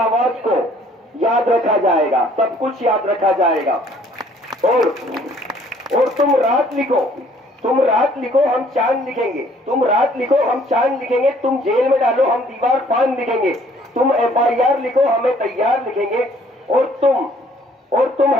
को याद रखा जाएगा, सब कुछ याद रखा जाएगा। और तुम रात लिखो हम चांद लिखेंगे, तुम रात लिखो हम चांद लिखेंगे, तुम जेल में डालो हम दीवार फान लिखेंगे, तुम FIR लिखो हमें तैयार लिखेंगे, और तुम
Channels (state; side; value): normal; both; correlation 0.59